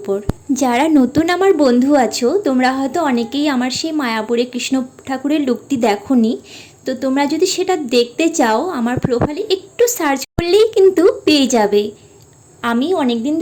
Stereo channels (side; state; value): both; identical; correlation 1.00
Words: যারা নতুন আমার বন্ধু আছো তোমরা হয়তো অনেকেই আমার সেই মায়াপুরের কৃষ্ণ ঠাকুরের লুকটি দেখোনি, তো তোমরা যদি সেটা দেখতে চাও আমার প্রোফাইলে একটু সার্চ করলেই কিন্তু পেয়ে যাবে। আমি অনেক দিন